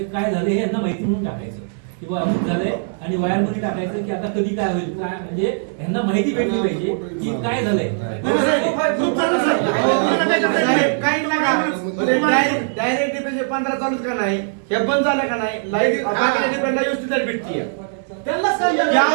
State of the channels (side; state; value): left; silent; digital silence